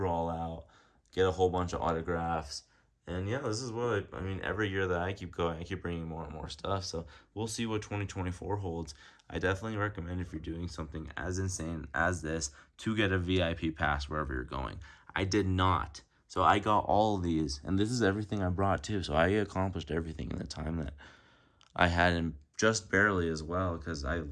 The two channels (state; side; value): identical; both; correlation 1.00